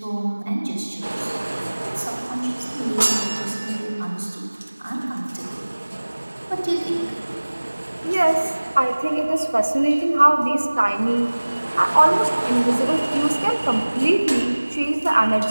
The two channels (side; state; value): both; inverted; correlation -1.00